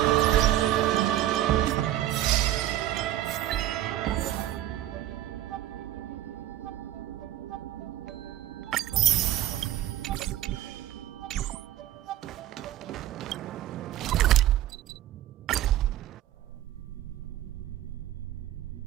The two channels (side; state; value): left; quieter; 13.3 dB